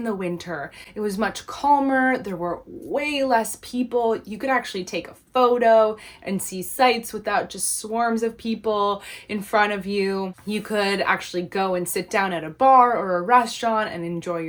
the winter. It was much calmer. There were way less people. You could actually take a photo and see sights without just swarms of people in front of you. You could actually go and sit down at a bar or a restaurant and enjoy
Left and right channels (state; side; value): identical; both; correlation 1.00